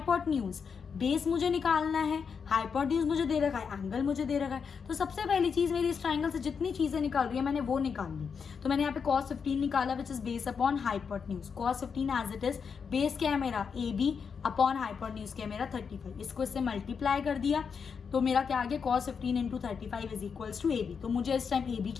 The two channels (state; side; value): quieter; right; 6.2 dB